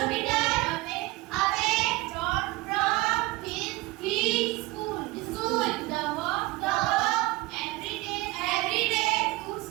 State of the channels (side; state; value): left; quieter; 21.0 dB